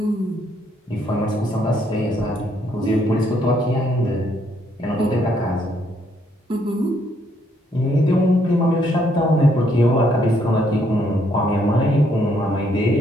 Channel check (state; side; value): normal; both; correlation 0.71